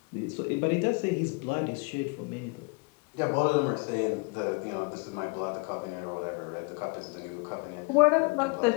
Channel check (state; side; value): quieter; right; 29.6 dB